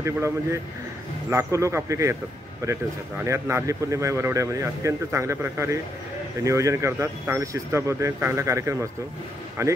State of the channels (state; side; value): normal; both; correlation 0.77